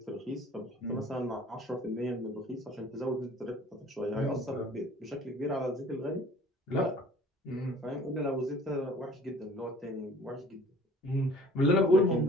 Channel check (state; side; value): normal; both; correlation 0.49